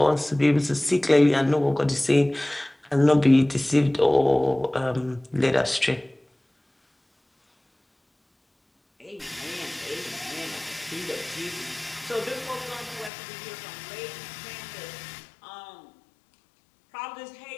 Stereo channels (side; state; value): right; drops out; at 13.1 s